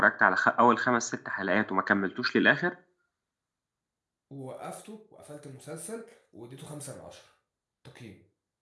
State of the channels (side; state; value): both; identical; correlation 1.00